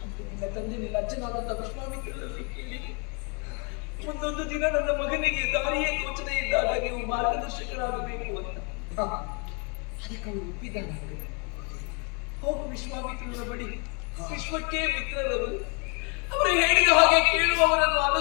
ನಿನ್ನ ತಂದೆ ನಿನ್ನ ಅಜ್ಜನಾದಂತ ವಿಶ್ವಾಮಿತ್ರರಲ್ಲಿ ಕೇಳಿ ಮುಂದೊಂದು ದಿನ ನನ್ನ ಮಗನಿಗೆ ದಾರಿಯೇ ತೋಚದೆ ಇದ್ದಾಗ ನೀವು ಮಾರ್ಗದರ್ಶಕರಾಗಬೇಕು ಅಂತ. ಅದಕ್ಕೆ ಅವರು ಒಪ್ಪಿದ್ದಾನೆ. ಹೋಗು ವಿಶ್ವಾಮಿತ್ರರ ಬಳಿ, ವಿಶ್ವಕ್ಕೆ ಮಿತ್ರರವರು, ಅವರು ಹೇಳಿದ ಹಾಗೆ ಕೇಳುವವರನ್ನು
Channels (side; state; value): right; quieter; 35.7 dB